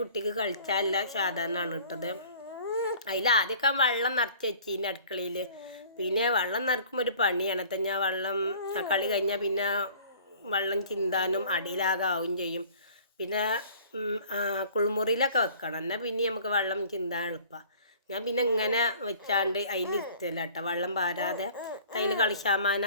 കളിച്ചാലുള്ള സാധനമാണ് ഇട്ടത്. അതിൽ ആദ്യമൊക്കെ വെള്ളം നിറച്ച് വെച്ചിന് അടുക്കളയിൽ. പിന്നെ വെള്ളം നിറക്കുമ്പോൾ ഒരു പണിയാണ്. ഞാൻ വെള്ളം കളി കഴിഞ്ഞാൽ പിന്നെ വെള്ളം ചിന്താനും അടിയിലാകെ ആവും ചെയ്യും. പിന്നെ കുളിമുറിയിലൊക്കെ വെക്കണം, എന്നാൽ പിന്നെ നമുക്ക് വെള്ളം ചിന്താൻ എളുപ്പമാണ്. ഞാൻ പിന്നെ ഇങ്ങനെ വെച്ചാണ്ട് അതിലിരുത്തല്ല കേട്ടോ, വെള്ളം പാരാതെ അതിൽ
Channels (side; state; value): both; inverted; correlation -0.49